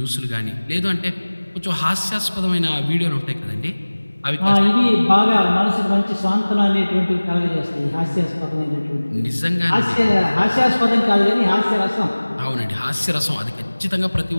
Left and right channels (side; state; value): both; inverted; correlation -1.00